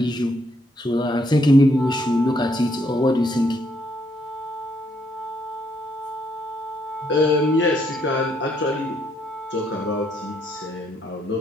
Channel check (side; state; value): both; normal; correlation 0.72